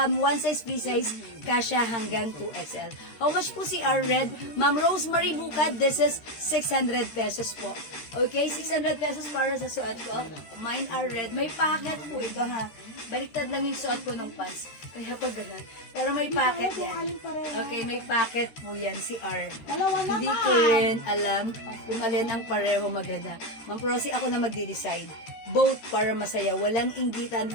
one size, free size, kasha hanggang 2XL. How much po si R Red? Ma'am Rosemary Bukad, this is 600 pesos po. Okay, 600 pesos para sa suot ko. Mine R Red. May packet po ito, ha. Baliktad lang yung suot ko ng pants. Kaya pa ganun. Pero may packet yan. Okay, may packet po yan si R. Dalawa naman. Hindi ko rin alam kung alin ang pareho maganda. Ma'am Prosy, ako na magde-decide. Both para masaya. Walang inggitan,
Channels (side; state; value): right; late; 13 ms